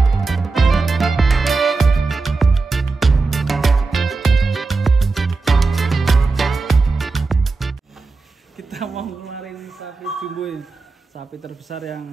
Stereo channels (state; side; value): quieter; left; 3.9 dB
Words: Kita mau ngeluarin sapi jumbo ini, sapi terbesar